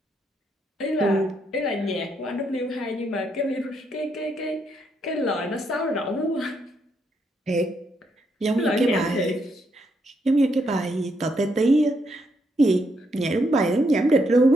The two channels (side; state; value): both; normal; correlation 0.76